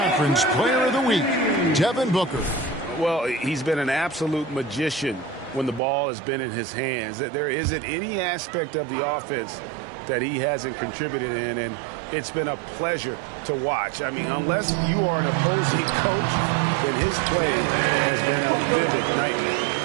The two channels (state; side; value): drops out; left; at 5.8 s